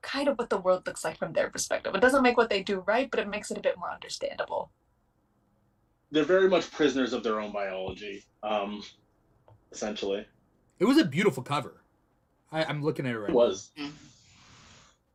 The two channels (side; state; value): both; identical; correlation 1.00